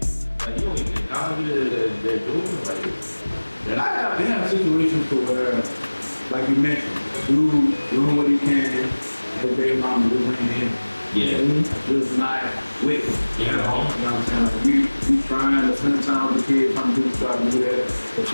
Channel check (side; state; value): both; inverted; correlation -1.00